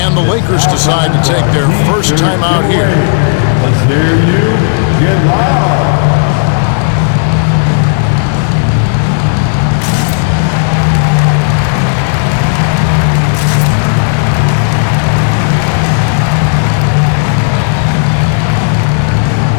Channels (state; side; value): silent; right; digital silence